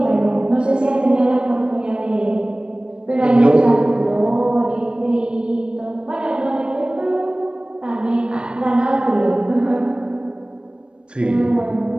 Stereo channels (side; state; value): left; late; 0.056 ms